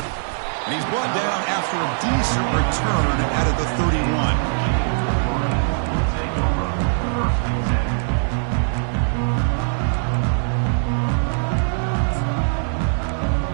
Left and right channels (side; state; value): left; silent; digital silence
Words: And he's brought down after a decent return out of the 31.